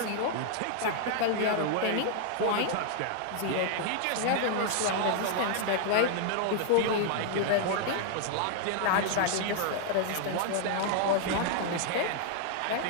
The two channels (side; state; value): both; different; correlation 0.00